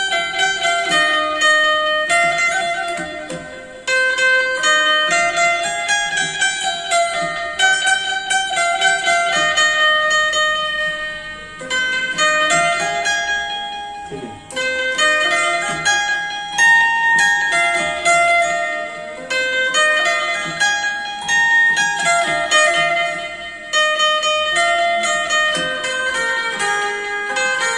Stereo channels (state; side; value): identical; both; correlation 1.00